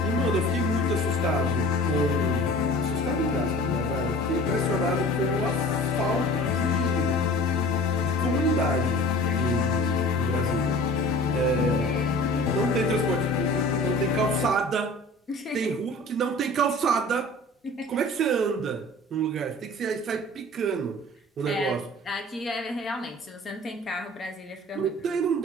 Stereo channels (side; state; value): both; normal; correlation 0.42